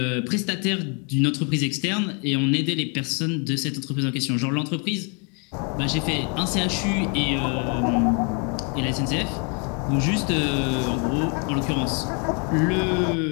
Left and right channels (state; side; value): quieter; right; 36.9 dB